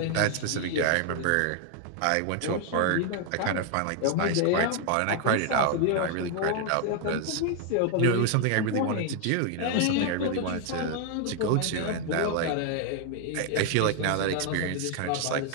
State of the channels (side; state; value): both; different; correlation 0.00